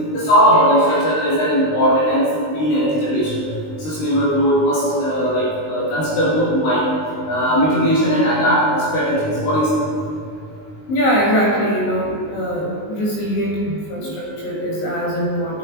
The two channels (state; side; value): late; right; 19 ms